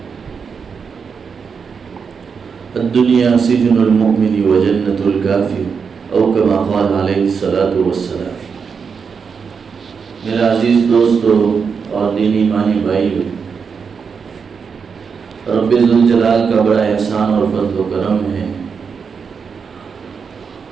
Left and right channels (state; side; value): quieter; left; 5.9 dB